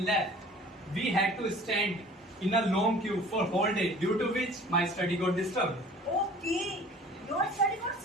left. We had to stand in a long queue for whole day, due to which my study got disturbed. Okay, your study got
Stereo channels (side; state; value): both; normal; correlation 0.47